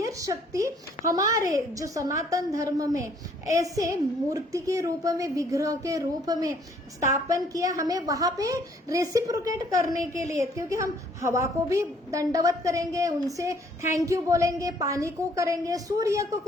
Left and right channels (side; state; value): both; normal; correlation 0.62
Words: शक्ति हमारे जो सनातन धर्म में ऐसे मूर्ति के रूप में, विग्रह के रूप में स्थापन किया, हमें वहां पे रेसिप्रोकेट करने के लिए, क्योंकि हम हवा को भी दंडवत करेंगे, उनसे थैंक यू बोलेंगे, पानी को करेंगे, सूर्य को